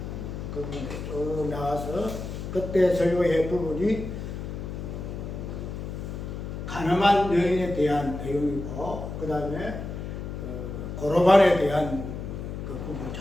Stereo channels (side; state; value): left; noise; hum, 7 dB below the sound